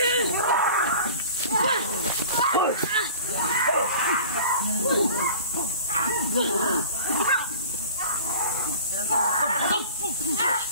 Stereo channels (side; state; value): both; inverted; correlation -0.41